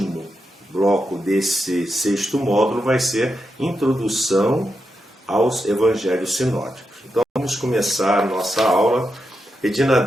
bloco desse 6º módulo vai ser Introdução aos Evangelhos Sinóticos. Então vamos começar a nossa aula pedindo a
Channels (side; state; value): both; normal; correlation 0.86